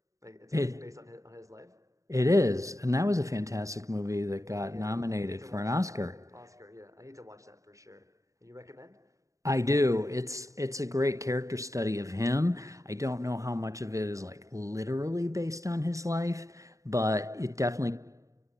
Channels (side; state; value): left; late; 0.16 ms